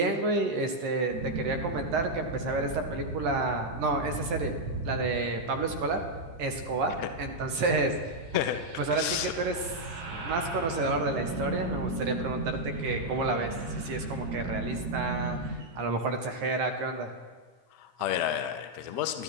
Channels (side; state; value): left; late; 12 ms